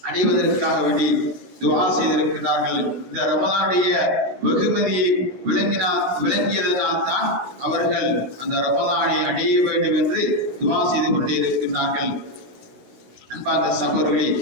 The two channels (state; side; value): late; left; 16 ms